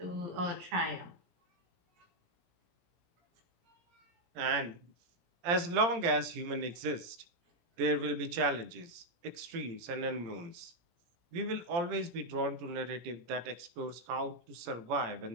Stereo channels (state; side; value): late; left; 17 ms